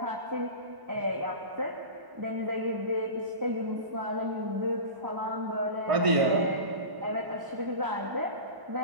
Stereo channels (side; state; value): left; late; 1.0 ms